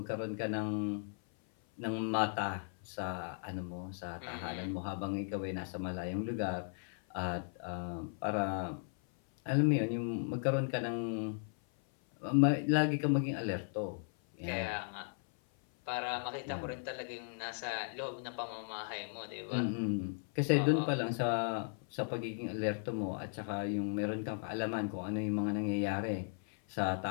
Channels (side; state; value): right; silent; 53 dB below the other